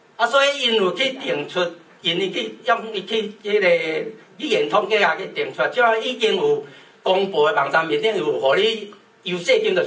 啊，所以因有去定出，因去用伊去迄个语言统计啊去定出，即个已经有公布的网站面顶有互你优势金就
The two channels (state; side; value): identical; both; correlation 1.00